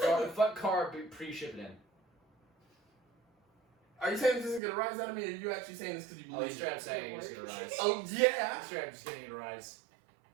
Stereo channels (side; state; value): left; drops out; at 4.6 s